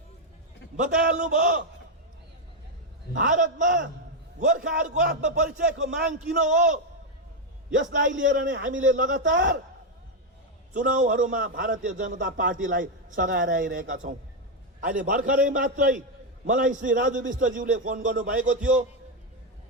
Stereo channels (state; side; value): normal; both; correlation 0.04